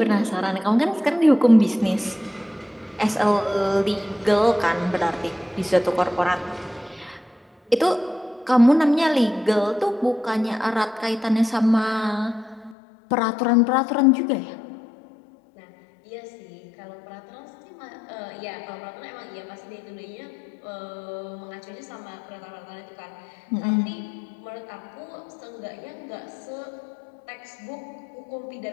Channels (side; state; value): right; drops out; at 12.8 s